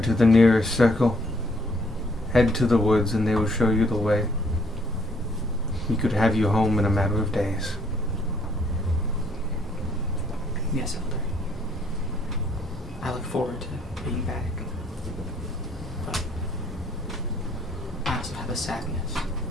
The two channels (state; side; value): normal; both; correlation 0.65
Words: to the nearest circle. Head to the woods and they will show you the way. We could have you home in a matter of days. Yes, Elder. I look forward to being back. But I also have a sadness.